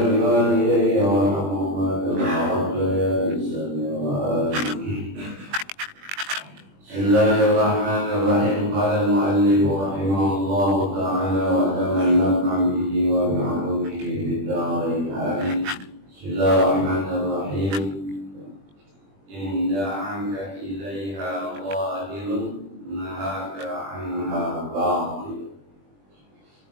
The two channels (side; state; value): left; late; 20 ms